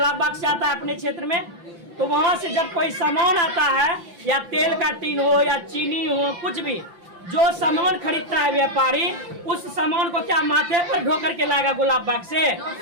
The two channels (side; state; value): left; late; 5.8 ms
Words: बाग से आता है अपने क्षेत्र में। तो वहां से जब कोई सामान आता है, या तेल का टीन हो या चीनी हो, कुछ भी जो सामान खरीदता है व्यापारी, उस सामान को क्या माथे पर ढो करके लाएगा गुलाब बाग से?